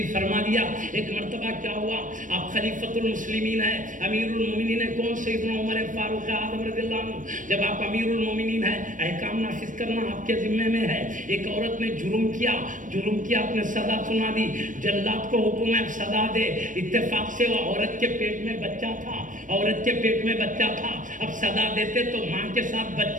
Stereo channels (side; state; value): left; late; 0.38 ms